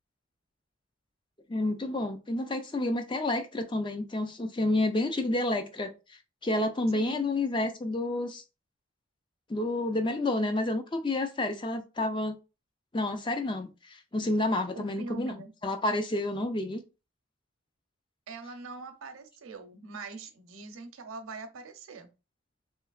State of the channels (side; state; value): both; normal; correlation 0.57